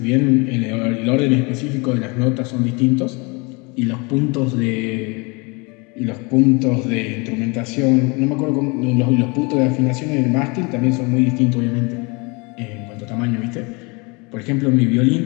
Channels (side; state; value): right; quieter; 29.0 dB